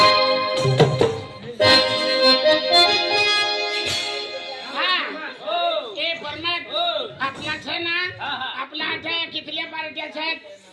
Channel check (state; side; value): identical; both; correlation 1.00